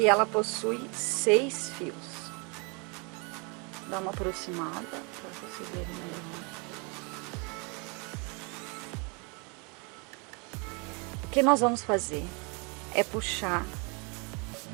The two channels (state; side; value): quieter; left; 32.5 dB